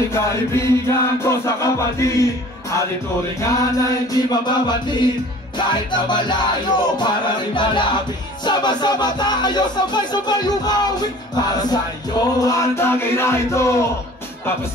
kaibigan ko sa kapatid, ating turingan na hindi mababatid. Kahit na malayo, para rin malapit, sama-sama tayo, sabay-sabay umawi. Para sa iyo ang tagay na ito, tapos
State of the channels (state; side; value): normal; both; correlation 0.47